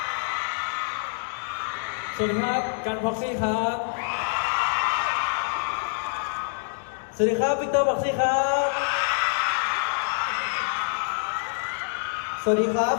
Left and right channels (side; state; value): right; silent; digital silence